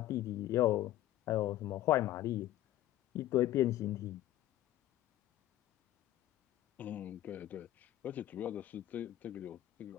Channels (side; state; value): right; quieter; 14.0 dB